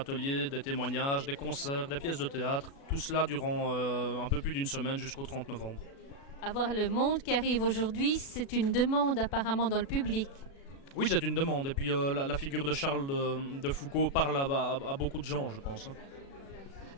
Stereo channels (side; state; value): right; late; 36 ms